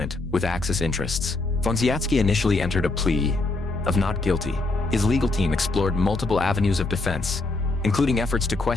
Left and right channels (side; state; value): right; quieter; 3.2 dB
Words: with Axis interests. Vonsiatsky initially entered a plea of not guilty. His legal team explored multiple avenues of defense, including efforts to